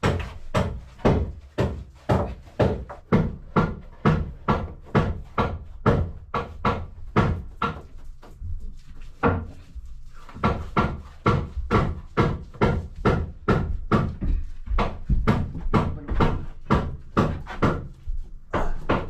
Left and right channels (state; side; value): identical; both; correlation 1.00